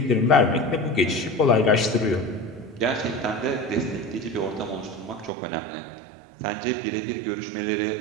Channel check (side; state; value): left; drops out; at 5.3 s